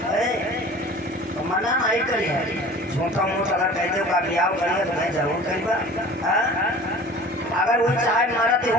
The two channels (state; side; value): normal; both; correlation 0.43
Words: तो मना नहीं करी, झूठा मूठ अगर कह दो का विवाह करिए तो मैं जरूर करीबा। अगर वो चाहे मरते